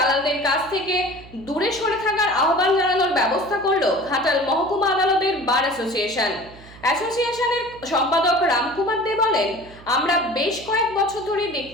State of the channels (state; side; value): noise; right; hum, 20 dB below the sound